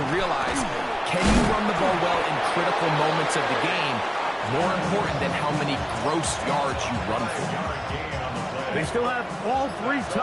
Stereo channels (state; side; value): identical; both; correlation 1.00